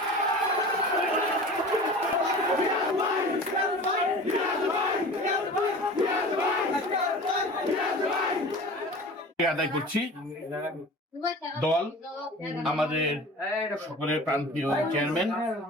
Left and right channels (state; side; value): normal; both; correlation 0.39